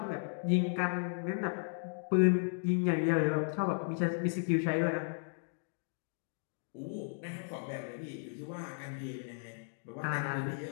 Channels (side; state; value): right; silent; digital silence